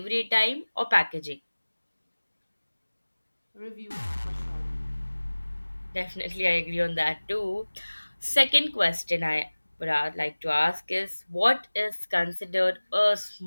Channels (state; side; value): inverted; both; correlation -1.00